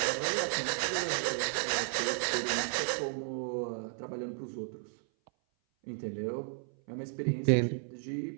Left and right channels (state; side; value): silent; left; 55 dB below the other